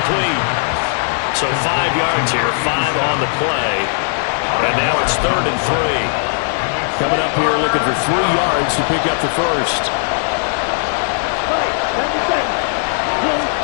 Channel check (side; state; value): right; silent; 63 dB below the other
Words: So 5 yards here, 5 on the play. And now it's 3rd and 3. Coming up here looking for 3 yards to pick up the first.